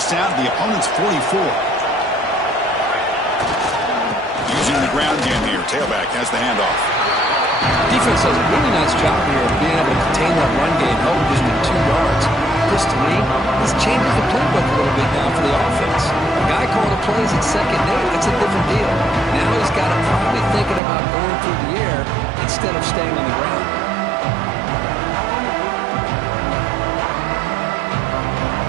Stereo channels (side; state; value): left; drops out; at 20.8 s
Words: down to the opponent's 44. Using the ground game here. Tailback has the handoff. Defense does a really nice job here of being able to contain that run game, held just with 2 yards. Chris, to me, this changes the playbook a little bit now for the offense. The guy calling the plays at second and 8, that's a different deal. Now he's got to probably thinking about going through the air instead of staying on the ground.